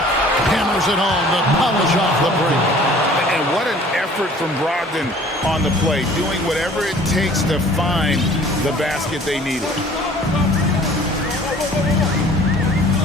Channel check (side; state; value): both; normal; correlation 0.51